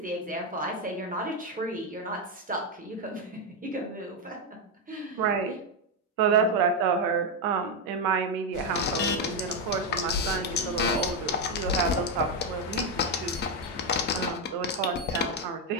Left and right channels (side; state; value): both; normal; correlation 0.05